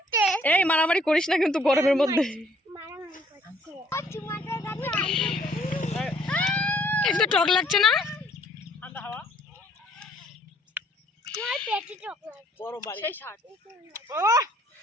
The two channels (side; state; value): both; normal; correlation 0.62